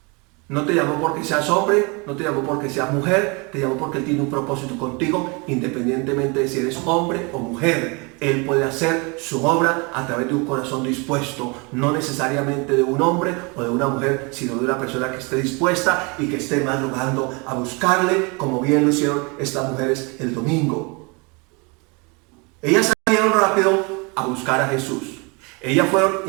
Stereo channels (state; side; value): quieter; left; 29.7 dB